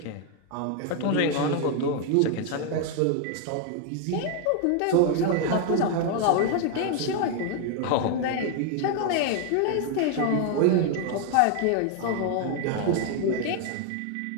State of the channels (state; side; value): different; both; correlation 0.00